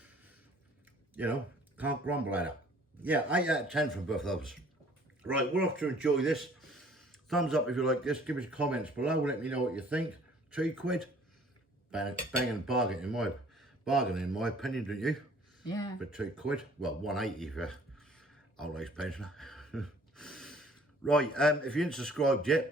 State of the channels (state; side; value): normal; both; correlation 0.55